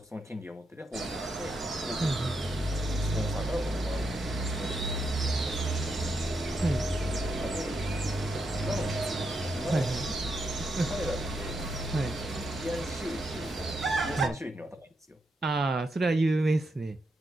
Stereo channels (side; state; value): both; normal; correlation 0.82